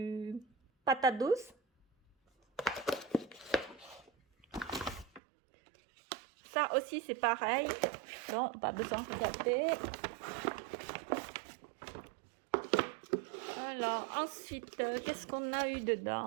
patate douce. Ça aussi, c'est pareil. Non, pas besoin de regarder. Alors, ensuite, qu'est-ce qu'on a eu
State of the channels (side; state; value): left; drops out; at 5.2 s